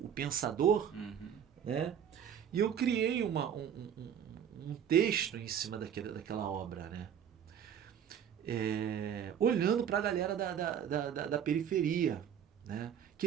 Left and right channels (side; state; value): left; quieter; 8.7 dB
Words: pensador, né? E eu criei um texto em cima daquela obra, né? Olhando para a galera da periferia, né?